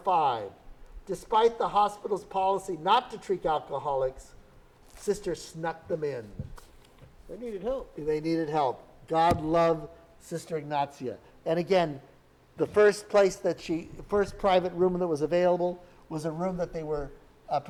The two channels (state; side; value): identical; both; correlation 1.00